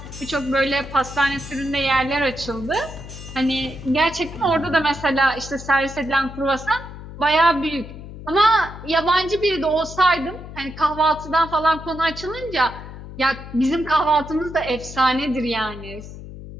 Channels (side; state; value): left; noise; hum, 13 dB below the sound